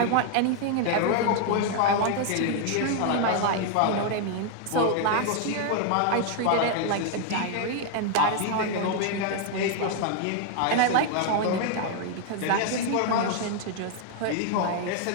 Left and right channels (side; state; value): both; different; correlation 0.00